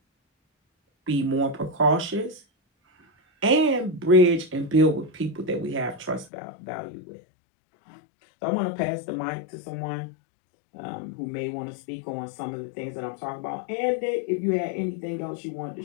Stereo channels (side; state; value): right; drops out; at 6.3 s